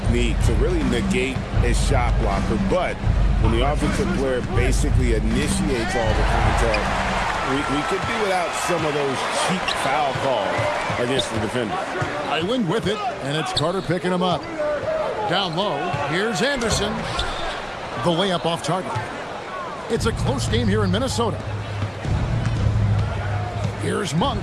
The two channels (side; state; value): both; identical; correlation 1.00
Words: to really negate a shot blocker. But when the offensive player basically initiates all the contact, We could do without some of those cheap foul calls against the defender. Highland with it, and it's Carter picking him up. Down low, here's Anderson. The layup off target. It's a close game here in Minnesota. Here's Monk.